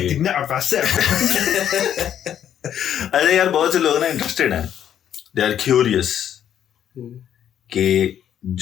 ارے یار بہت سے لوگ نا انٹرسٹیڈ ہیں، دے آر کیوریس کہ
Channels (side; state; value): right; quieter; 9.9 dB